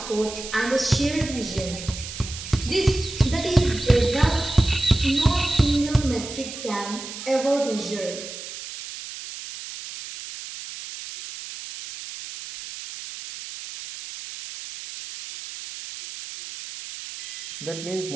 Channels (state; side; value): noise; right; hiss, 10 dB below the sound